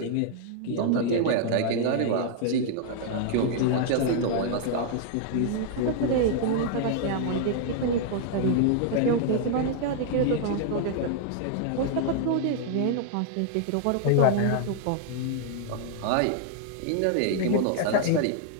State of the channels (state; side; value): different; both; correlation 0.00